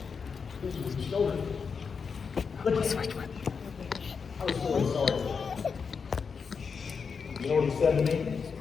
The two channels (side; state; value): right; quieter; 5.7 dB